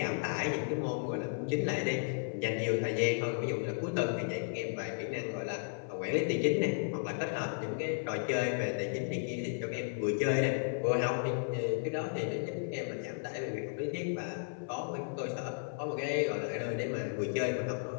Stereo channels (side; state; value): right; silent; 55 dB below the other